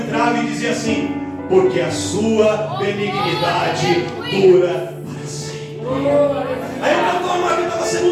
e dizia assim: porque a sua benignidade dura para sempre. Aí o cantor mor cantava a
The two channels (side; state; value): both; identical; correlation 1.00